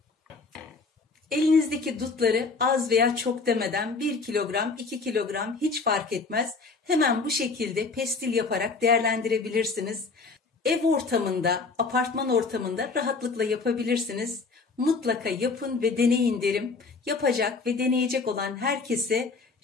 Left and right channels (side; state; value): right; quieter; 4.2 dB